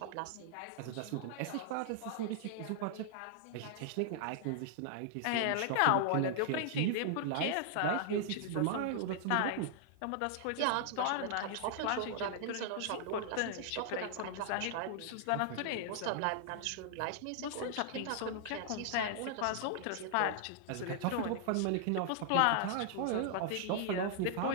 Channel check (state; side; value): different; both; correlation -0.01